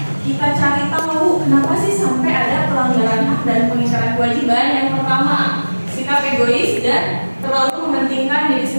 kita cari tahu kenapa sih sampai ada pelanggaran hak dan pengingkaran kewajiban, yang pertama sikap egois dan terlalu mementingkan diri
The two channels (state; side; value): inverted; both; correlation -1.00